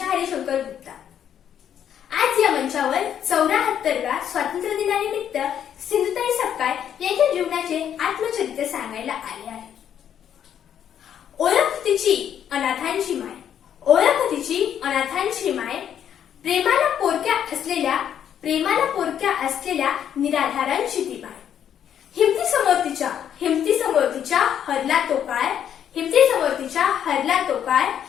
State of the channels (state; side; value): quieter; right; 9.4 dB